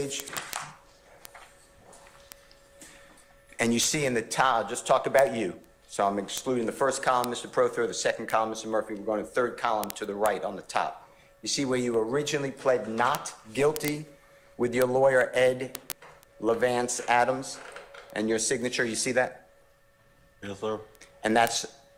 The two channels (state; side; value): identical; both; correlation 1.00